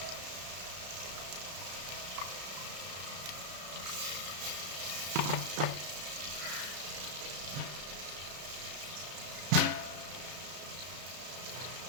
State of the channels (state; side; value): late; left; 33 ms